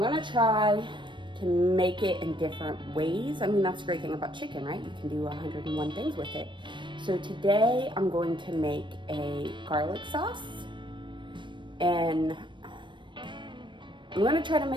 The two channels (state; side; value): late; left; 0.23 ms